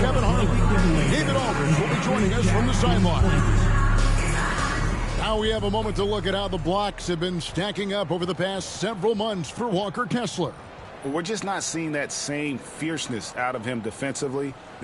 Harlan. David Aldridge will be joining us from the sideline. Now we have a moment to look at how the blocks have been stacking up over the past several months for Walker Kessler. We're just not seeing that same fierceness out of him defensively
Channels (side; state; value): both; identical; correlation 1.00